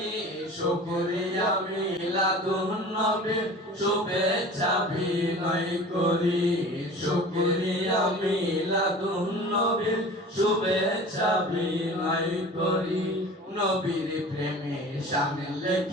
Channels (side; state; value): both; normal; correlation 0.40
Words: শুকরিয়া মিলাদুন নবীর শুভেচ্ছা বিনয় করি শুকরিয়া মিলাদুন নবীর শুভেচ্ছা বিনয় করি নবীর প্রেমে শান